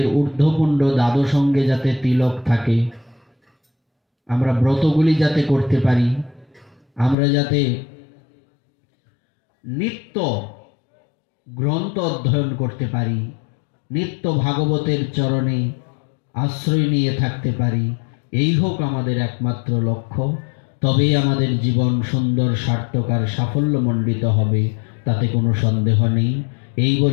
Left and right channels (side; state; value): right; drops out; at 7.2 s